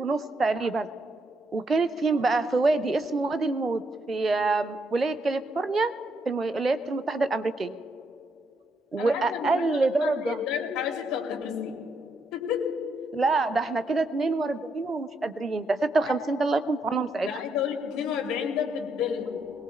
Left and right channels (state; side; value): normal; both; correlation 0.77